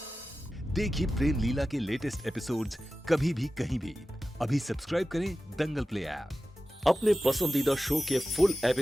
देखिए प्रेम लीला के लेटेस्ट एपिसोड्स कभी भी कहीं भी। अभी सब्सक्राइब करें दंगल प्ले ऐप। अपने पसंदीदा शो के फुल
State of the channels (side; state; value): both; normal; correlation 0.94